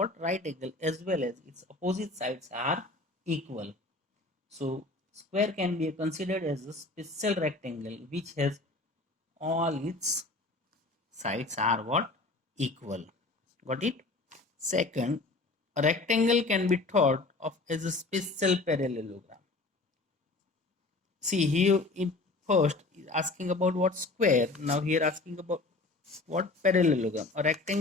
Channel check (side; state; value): right; quieter; 3.2 dB